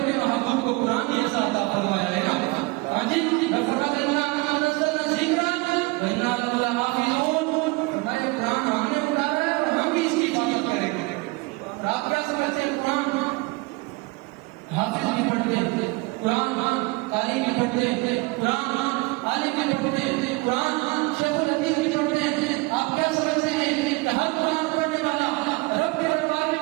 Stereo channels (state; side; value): quieter; left; 25.2 dB